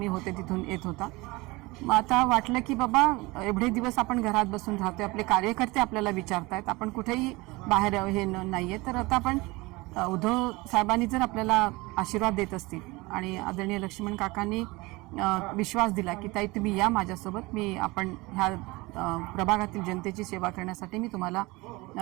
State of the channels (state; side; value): quieter; left; 23.0 dB